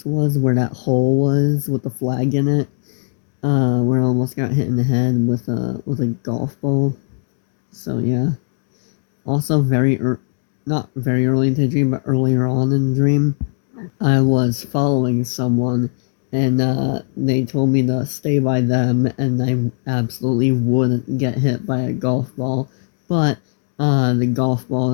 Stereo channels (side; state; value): right; silent; digital silence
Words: was, where that hole was with the flag in it. Where I almost got hit in the head with a golf ball. So yeah. Also very not very early into the dream, but earlier on in the dream, I was following someone, and they told me to stay by them, and I absolutely wouldn't get hit by a golf ball. But the golf ball